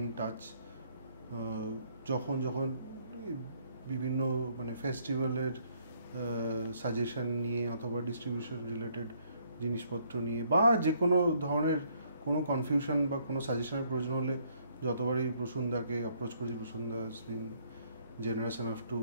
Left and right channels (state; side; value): inverted; both; correlation -0.68